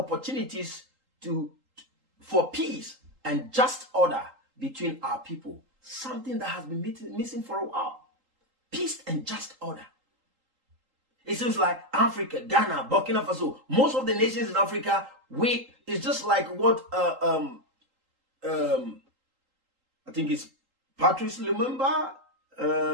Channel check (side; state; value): left; late; 3.8 ms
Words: for peace and just order between our people. Something that has been missing for a while. Peace and just order. It seems like Africa, Ghana, Burkina Faso, most of the nations in Africa, it's just like what I think it's Patrice Lumumba.